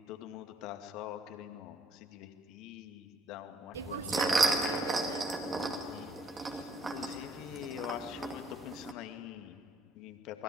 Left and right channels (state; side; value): normal; both; correlation 0.65